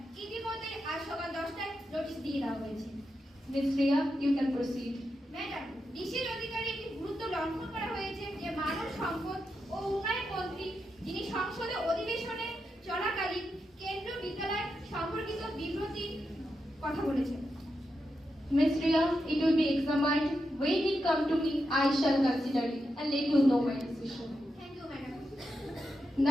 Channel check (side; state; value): both; normal; correlation 0.87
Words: ইতিমধ্যে আজ সকাল 10টায় নোটিশ দিয়ে দেওয়া হয়েছে। Ms. Riya, you can proceed. Madam, বিশেষ অধিকারে একটি গুরুত্ব লঙ্ঘন করা হয়েছে যে মানব সম্পদ ও উন্নয়ন মন্ত্রী, যিনি সংসদে অধিবেশনে চলাকালীন কেন্দ্রীয় বিদ্যালয় সম্পর্কিত বিবৃতি কথা বলেছেন। Ms. Riya, it will be examined. When it come to me, I shall consider it and let you know my decision. Thank you madam.